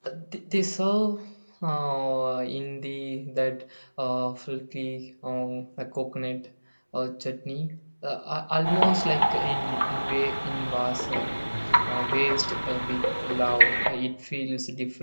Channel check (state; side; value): inverted; both; correlation -1.00